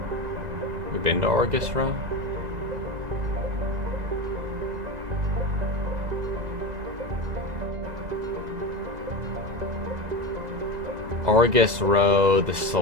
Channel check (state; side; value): late; left; 2.0 ms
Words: You been to Argus Row? Argus Row, the